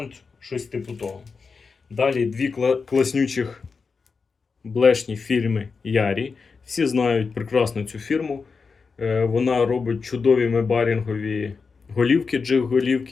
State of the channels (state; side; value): quieter; right; 4.9 dB